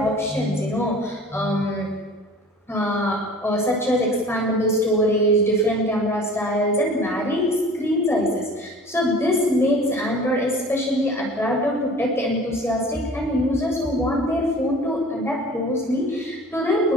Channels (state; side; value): normal; both; correlation 0.44